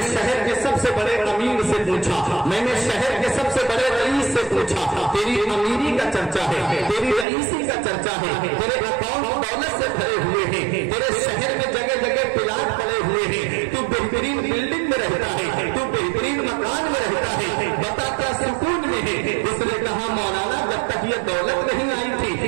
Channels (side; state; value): left; drops out; at 7.2 s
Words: شہر کے سب سے بڑے امیر سے پوچھا، میں نے شہر کے سب سے بڑے رئیس سے پوچھا، تیری امیری کا چرچا ہے، تیری رئیسی کا چرچا ہے، تیرے اکاؤنٹ دولت سے بھرے ہوئے ہیں، تیرے شہر میں جگہ جگہ پلاٹ پڑے ہوئے ہیں، تو بہترین بلڈنگ میں رہتا ہے، تو بہترین مکان میں رہتا ہے، بتا کیا سکون میں ہے؟ اس نے کہا مولانا جب تک یہ دولت نہیں آئی